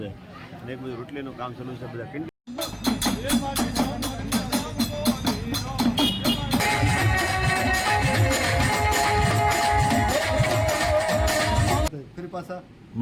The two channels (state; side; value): identical; both; correlation 1.00